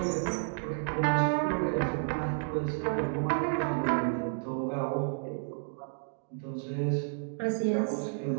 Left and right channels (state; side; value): silent; left; digital silence